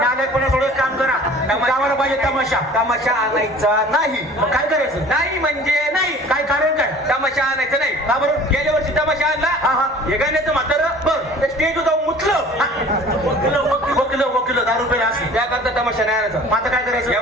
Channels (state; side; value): normal; both; correlation 0.46